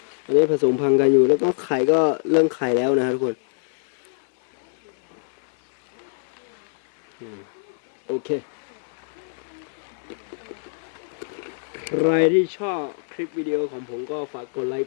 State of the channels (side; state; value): right; silent; 63 dB below the other